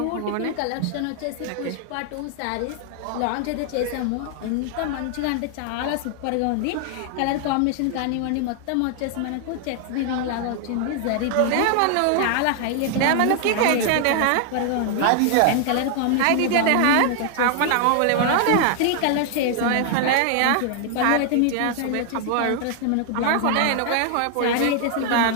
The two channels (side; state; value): both; different; correlation 0.00